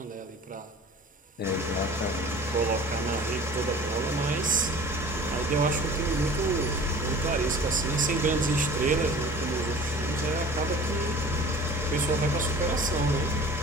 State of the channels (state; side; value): normal; both; correlation 0.43